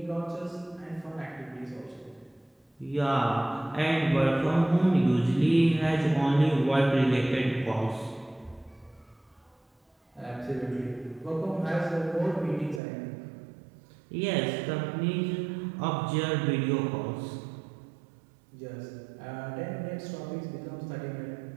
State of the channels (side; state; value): left; drops out; at 12.8 s